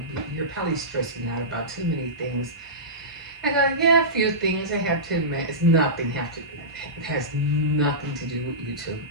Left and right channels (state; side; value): normal; both; correlation -0.19